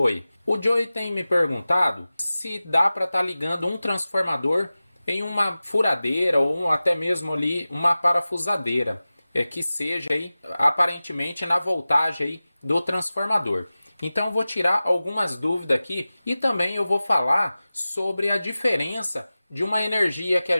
O Joey tem me perguntado se dá para estar ligando um transformador em uma furadeira ou até mesmo ali uma parafusadeira, que seja aí aparentemente na voltagem aí do transformador. Então eu vou tirar algumas dúvidas aqui e também eu vou falar sobre a diferença de uma energia que a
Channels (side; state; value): both; inverted; correlation -0.96